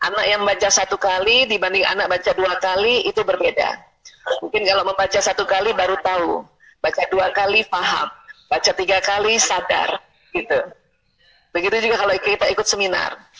Anak yang baca 1 kali dibanding anak baca 2 kali itu berbeda. Mungkin kalau membaca 1 kali baru tahu, baca 2 kali paham. Baca 3 kali sadar, gitu. Begitu juga kalau kita ikut seminar.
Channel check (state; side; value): identical; both; correlation 1.00